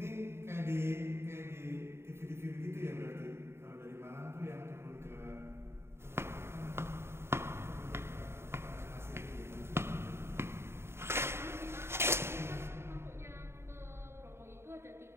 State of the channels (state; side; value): late; left; 0.12 ms